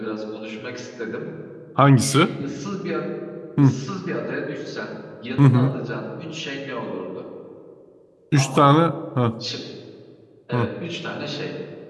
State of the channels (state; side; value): identical; both; correlation 1.00